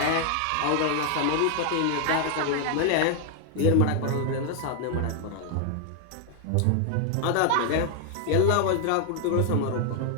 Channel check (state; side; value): different; both; correlation 0.00